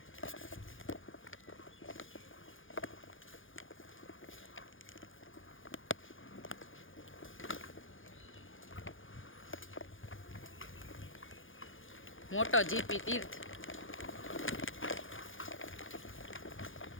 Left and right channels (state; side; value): late; right; 0.58 ms